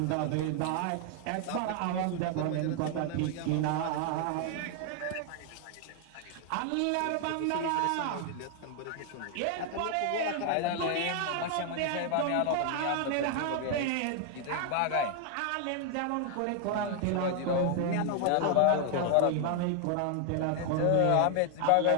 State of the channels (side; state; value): both; different; correlation 0.00